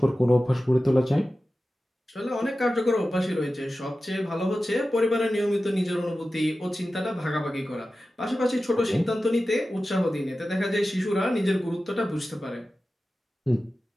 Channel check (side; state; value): both; normal; correlation 0.94